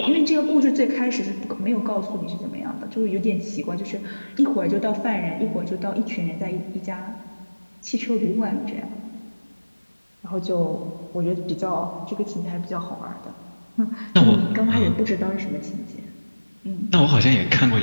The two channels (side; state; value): both; inverted; correlation -1.00